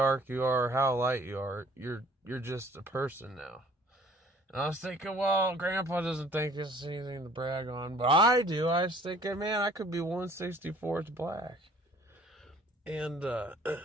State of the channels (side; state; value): both; normal; correlation 0.54